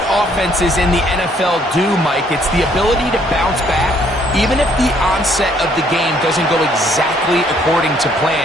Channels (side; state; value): both; normal; correlation 0.66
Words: offenses in the NFL do, Mike. It's the ability to bounce back, even if the onset of the game doesn't go exactly according to